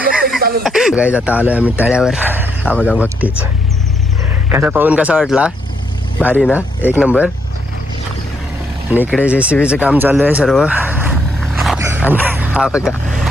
गाईज आता आलोय आम्ही तळ्यावर. हा बघा भक्तीच कसा पाहून कसा वाटला? भारी ना, एक नंबर. आणि इकडे JCBचं काम चालू आहे सर्व. आणि हा बघा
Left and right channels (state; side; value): normal; both; correlation 0.75